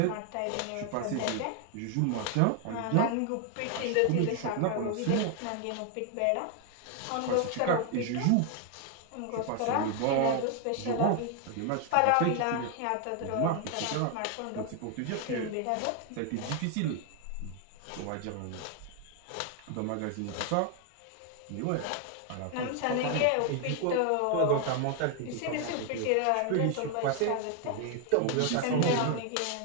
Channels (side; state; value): both; different; correlation 0.00